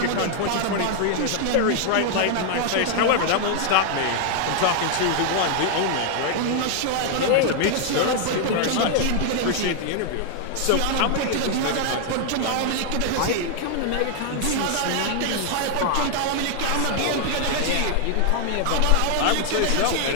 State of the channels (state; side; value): different; both; correlation 0.00